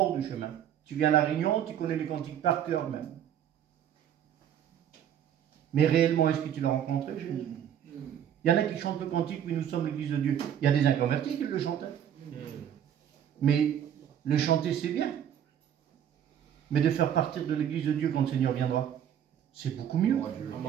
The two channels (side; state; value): left; quieter; 9.7 dB